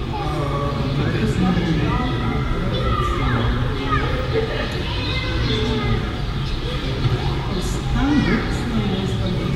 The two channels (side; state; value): both; identical; correlation 1.00